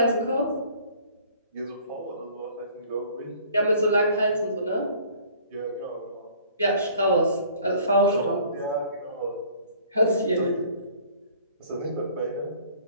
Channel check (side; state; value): both; inverted; correlation -0.53